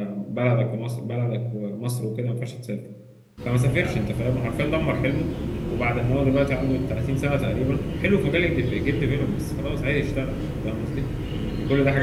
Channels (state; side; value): identical; both; correlation 1.00